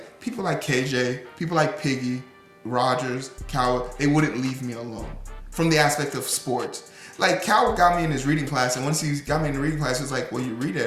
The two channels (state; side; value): identical; both; correlation 1.00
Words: people like KJ, people like Piggy, Rogers, Coward, they wouldn't leave me alone from the aspect of sports. Like, Cal got me in his reading class, and once he got me in the reading class, he was like, well, you read at